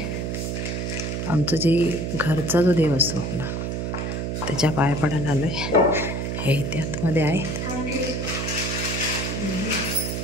आमचं जे घरचा जो देव असतो आपला, त्याच्या पाया पडायला आलोय। हे इथे आतमध्ये आहेत।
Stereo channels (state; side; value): noise; right; hum, 2 dB below the sound